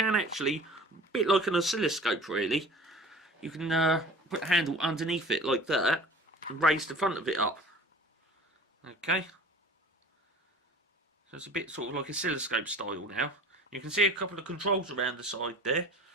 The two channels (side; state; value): both; normal; correlation 0.43